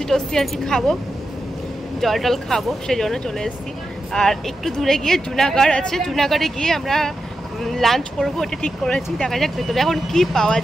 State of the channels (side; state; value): both; normal; correlation 0.89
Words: টস্যি আর কি খাবো, জল টল খাবো, সেই জন্য চলে এসেছি। আর একটু দূরে গিয়ে জুনাগড় আছে, জুনাগড়ে গিয়ে আমরা লাঞ্চ করবো, ওটা ঠিক করেছি। দেখা যাক ভেতরে এখন কি পাওয়া